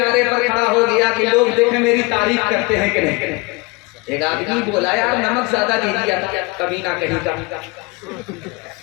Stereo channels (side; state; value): right; quieter; 25.5 dB